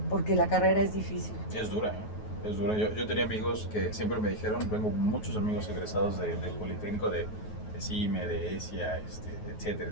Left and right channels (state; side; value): late; right; 9.4 ms